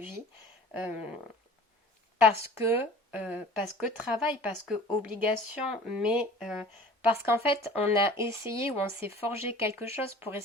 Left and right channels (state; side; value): normal; both; correlation 0.44